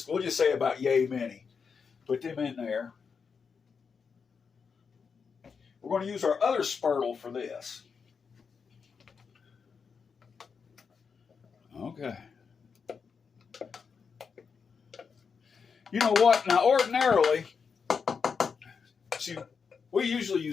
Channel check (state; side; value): quieter; right; 5.8 dB